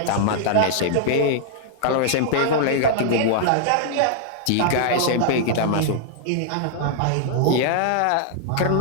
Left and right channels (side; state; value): both; different; correlation -0.01